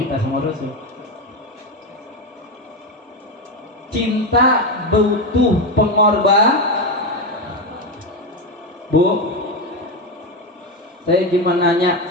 sama Rasul. Cinta butuh pengorbanan. Bu, saya cuma nanya,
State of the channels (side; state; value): both; normal; correlation 0.12